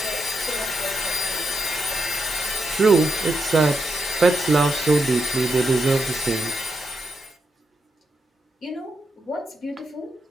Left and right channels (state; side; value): normal; both; correlation 0.83